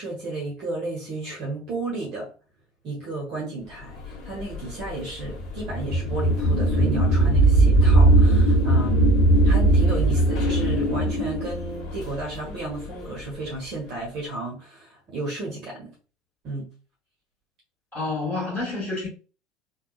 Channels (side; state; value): both; normal; correlation 0.43